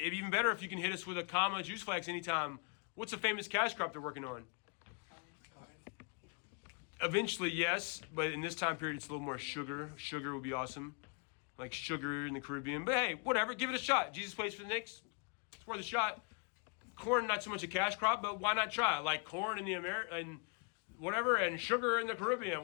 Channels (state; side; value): quieter; right; 35.5 dB